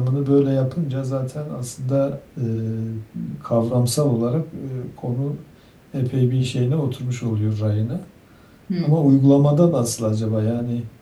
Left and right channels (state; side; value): identical; both; correlation 1.00